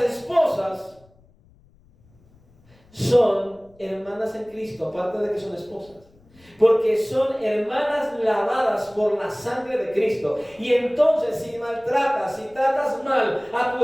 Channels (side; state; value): left; noise; rumble, 30 dB below the sound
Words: esposas son hermanas en Cristo, aparte de que son esposas. Porque son hermanas lavadas por la sangre de Cristo. Y entonces si maltratas, si tratas mal a